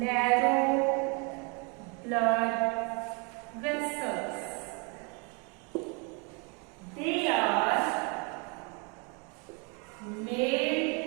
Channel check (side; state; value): left; quieter; 33.1 dB